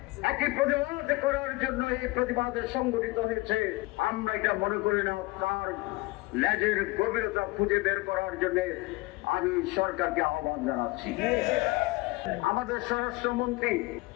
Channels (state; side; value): quieter; right; 22.2 dB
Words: একই প্রতিবাদ করার জন্য এই প্রতিবাদে সংগঠিত হয়েছে। আমরা এটা মনে করি না। তার লেজের গভীরতা খুঁজে বের করার জন্য আমি সরকারকে আহ্বান জানাচ্ছি। আমাদের স্বরাষ্ট্রমন্ত্রী